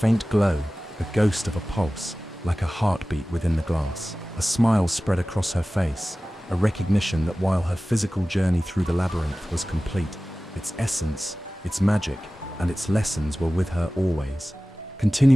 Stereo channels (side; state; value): both; normal; correlation 0.97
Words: glow, the ghost of a pulse, like a heartbeat within the glass. A smile spread across her face, a recognition that while her physical journey through the labyrinth was complete, its essence, its magic, and its lessons were with her always,